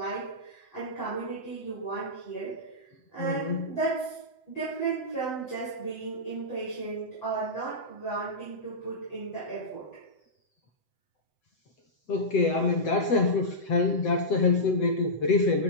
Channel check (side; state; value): right; late; 7.8 ms